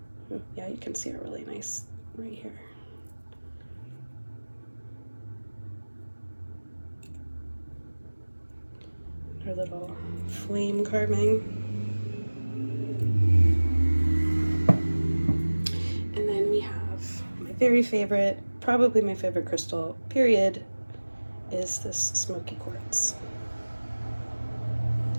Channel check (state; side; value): inverted; both; correlation -1.00